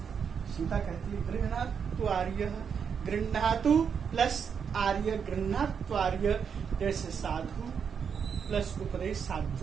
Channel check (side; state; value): left; quieter; 6.9 dB